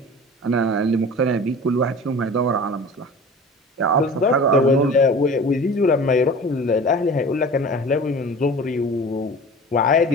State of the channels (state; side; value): normal; both; correlation 0.39